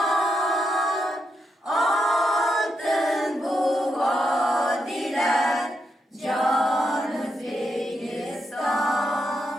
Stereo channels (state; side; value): normal; both; correlation 0.82